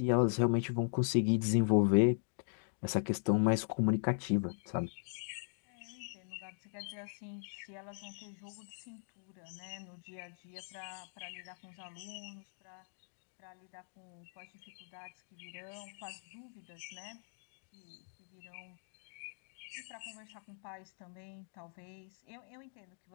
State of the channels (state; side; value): silent; right; digital silence